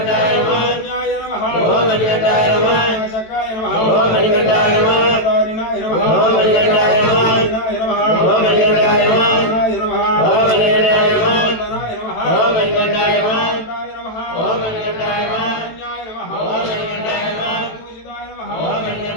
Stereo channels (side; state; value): right; late; 18 ms